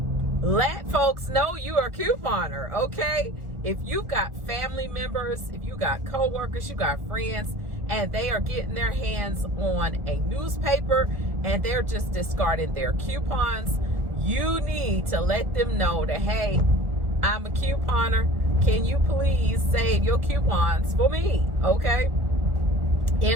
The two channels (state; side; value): late; left; 1.4 ms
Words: let folks know you are a couponer, okay? If you've got family members, if you got coworkers, you got friends, and they are getting their hands on a newspaper and they're just discarding their coupons, you need to let them know that, hey, I'm a couponer. Can you please save your coupons for me, okay?